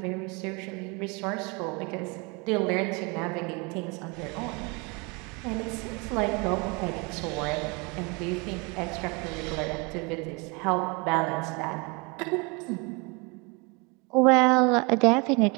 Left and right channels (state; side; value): quieter; left; 29.4 dB